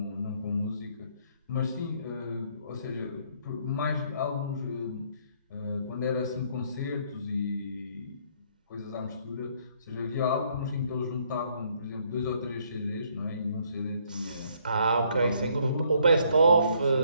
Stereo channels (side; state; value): both; inverted; correlation -0.67